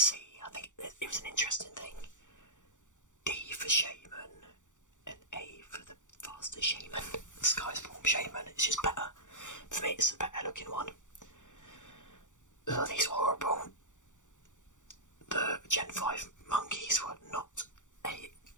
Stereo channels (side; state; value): right; late; 0.86 ms